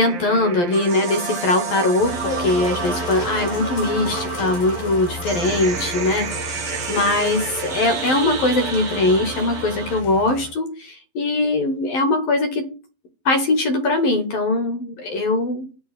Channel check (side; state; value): right; late; 11 ms